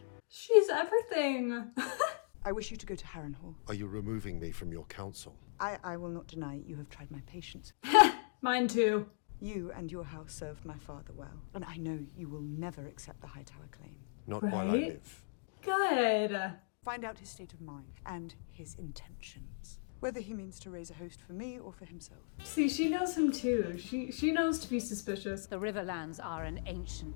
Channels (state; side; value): silent; right; digital silence